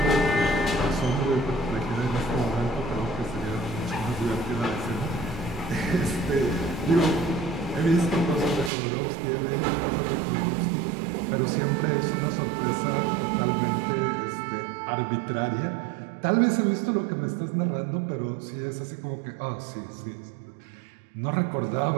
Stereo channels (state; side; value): drops out; left; at 8.7 s